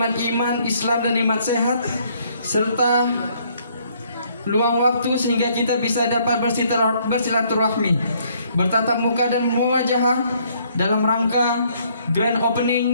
iman, Islam dan nikmat sehat serta luang waktu sehingga kita bisa dapat bersilaturahmi, bertatap muka dan muwajahah dalam rangka grand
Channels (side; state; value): both; inverted; correlation -0.65